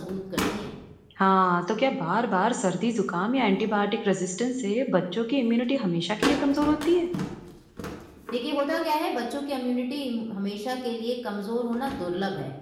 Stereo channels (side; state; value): both; identical; correlation 1.00